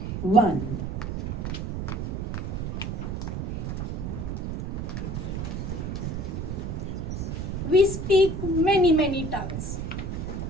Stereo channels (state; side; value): noise; right; rumble, 3 dB below the sound